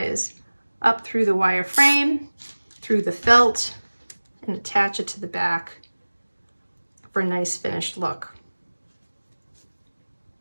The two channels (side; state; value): both; inverted; correlation -1.00